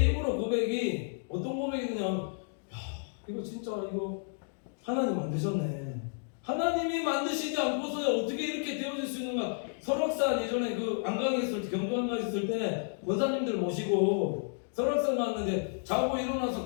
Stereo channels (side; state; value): right; silent; digital silence